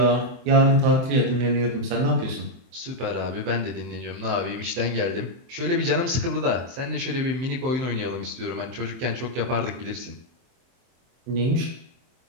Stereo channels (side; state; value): left; late; 23 ms